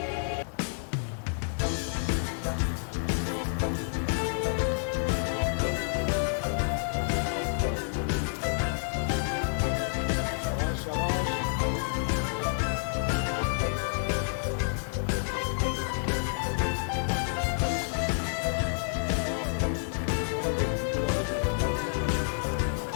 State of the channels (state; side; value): silent; right; digital silence